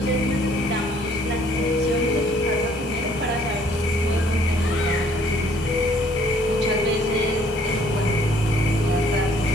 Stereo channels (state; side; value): normal; both; correlation 0.61